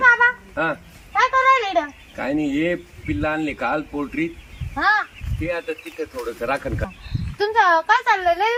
हा काय करायला इकडं? काय नाही हे पिल्ला आणले काल पोल्ट्री हा ते आता तिथं थोडस राखण का तुमचं काय चाललंय लय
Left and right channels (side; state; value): both; identical; correlation 1.00